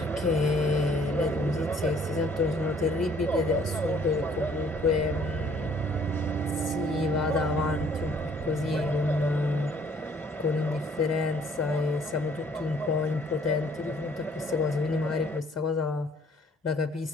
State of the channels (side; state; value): both; normal; correlation 0.60